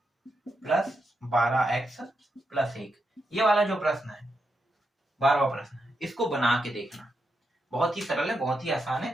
प्लस 12x प्लस 1। ये वाला जो प्रश्न है 12वां प्रश्न है, इसको बना के देखना। बहुत ही सरल है, बहुत ही आसान है।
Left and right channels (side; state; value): both; normal; correlation 0.84